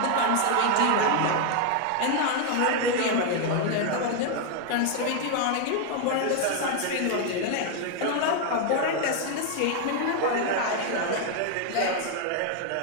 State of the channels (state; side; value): different; both; correlation 0.00